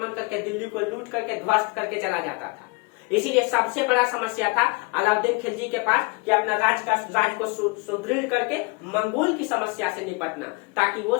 करके दिल्ली को लूट करके ध्वस्त करके चला जाता था। इसीलिए सबसे बड़ा समस्या था अलाउद्दीन खिलजी के पास कि अपना राज को सुदृढ़ करके मंगोल की समस्या से निपटना, ताकि वो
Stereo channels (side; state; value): right; quieter; 28.6 dB